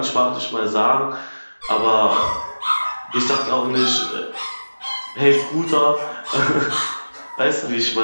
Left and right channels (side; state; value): both; inverted; correlation -1.00